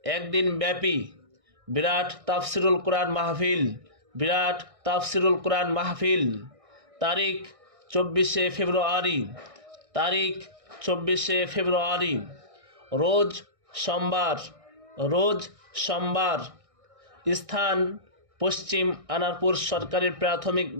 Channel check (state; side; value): late; left; 1.6 ms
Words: একদিন ব্যাপী বিরাট তাফসিরুল কোরআন মাহফিল তারিখ 24শে ফেব্রুয়ারি রোজ সোমবার। স্থান পশ্চিম আনারপুর সরকারি প্রাথমিক